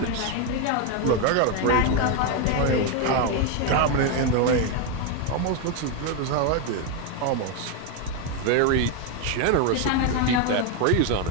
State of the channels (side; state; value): both; different; correlation 0.02